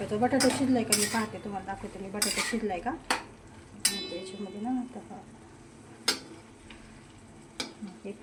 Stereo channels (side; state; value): both; identical; correlation 1.00